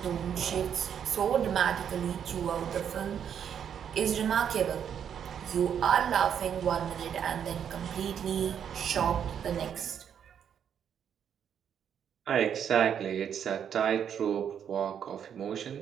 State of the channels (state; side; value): quieter; left; 8.4 dB